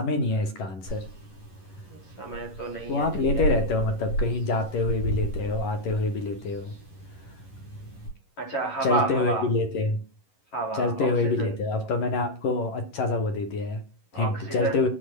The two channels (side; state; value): right; late; 11 ms